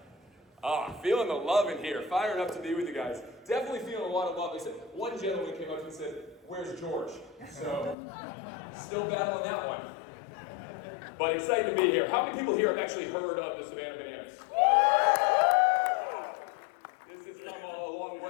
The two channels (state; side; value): drops out; right; at 8.0 s